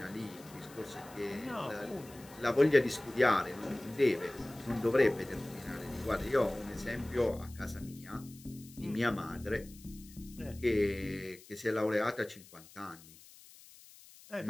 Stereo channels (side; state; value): left; noise; hiss, 21 dB below the sound